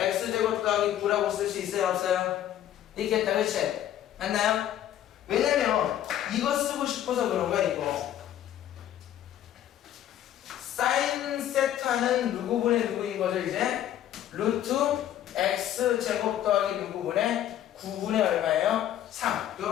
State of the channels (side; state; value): right; quieter; 11.6 dB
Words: 더하기 9라고 쓸 수 있어요, 없어요? 있겠다, 그치? 맞나요? 왜냐면 이거 쓰고 싶어서 그런 거야, 이거. 사인 세타는 누구분의 누구인 거죠, 이제? 루트 x제곱 더하기 누구분의 9분의 얼마예요? 3.